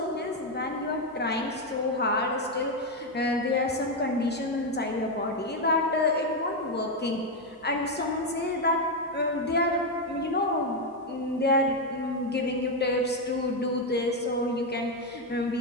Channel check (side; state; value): both; normal; correlation 0.05